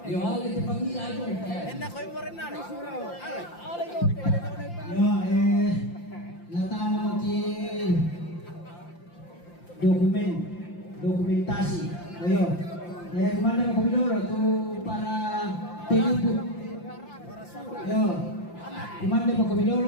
Yo ale te pangila ajo. Enda koy mo rin na. Ya, natama mo ki dokumentasi. Ayo. Kemana mau Komidoro tuh para penjemput. Yo. Kemana mau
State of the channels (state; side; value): late; right; 5.8 ms